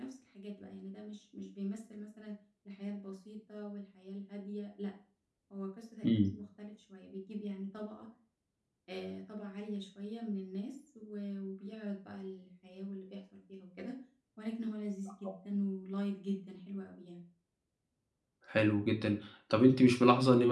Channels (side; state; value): both; identical; correlation 1.00